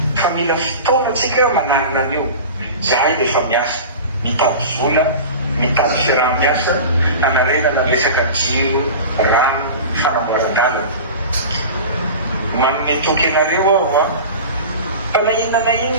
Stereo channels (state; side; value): inverted; both; correlation -0.33